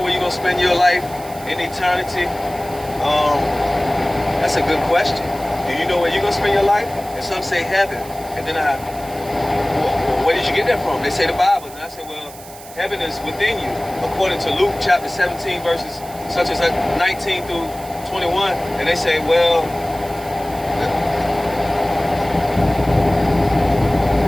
where you're going to spend your life in eternity? That's a good question. Do you know where you're going to spend your life? And some say heaven. And then where did you get that from? They say the Bible. And I say, well, heaven is within you. According to Luke chapter 17, verses such as 19 through 21. And they say, well,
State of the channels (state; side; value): noise; right; hiss, 18 dB below the sound